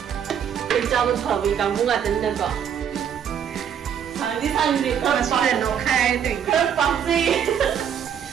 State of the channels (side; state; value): left; quieter; 8.4 dB